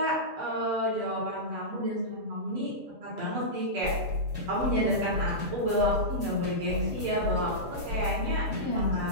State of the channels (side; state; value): left; late; 6.9 ms